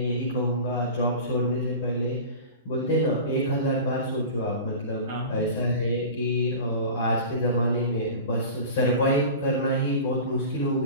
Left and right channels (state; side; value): inverted; both; correlation -0.35